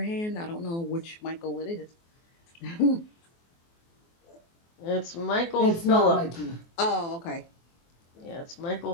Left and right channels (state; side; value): late; right; 24 ms